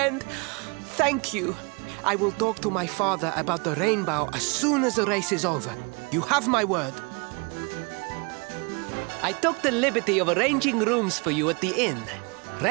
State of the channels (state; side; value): quieter; left; 31.6 dB